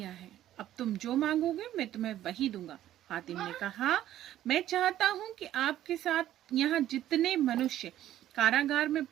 है। अब तुम जो मांगोगे मैं तुम्हें वही दूंगा। हातिम ने कहा, मैं चाहता हूं कि आपके साथ यहाँ जितने मनुष्य कारागार में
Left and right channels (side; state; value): left; quieter; 12.7 dB